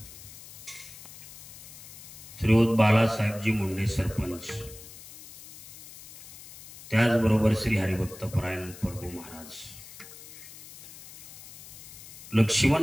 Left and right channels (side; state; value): left; noise; hiss, 17 dB below the sound